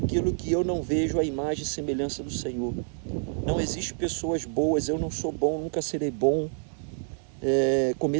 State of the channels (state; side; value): silent; left; 60 dB below the other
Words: que eu não vejo a imagem e semelhança do Senhor. Não existe pessoas boas, eu não sou bom, nunca serei bom.